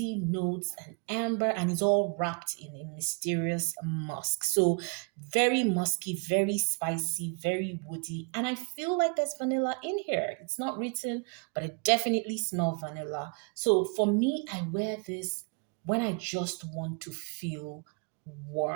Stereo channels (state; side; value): quieter; left; 35.7 dB